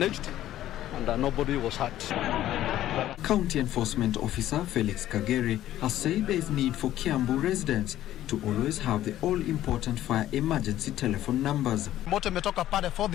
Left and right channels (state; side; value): quieter; right; 13.3 dB